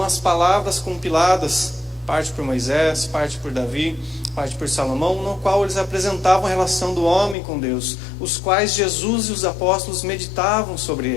as palavras compiladas, parte por Moisés, parte por Davi, parte por Salomão, no qual eles apresentavam a relação do homem com Deus, os quais Jesus e os apóstolos meditavam sobre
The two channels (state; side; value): drops out; right; at 7.4 s